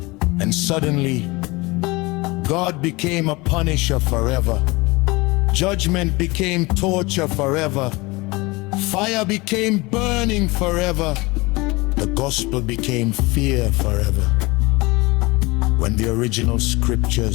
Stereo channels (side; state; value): right; quieter; 23.7 dB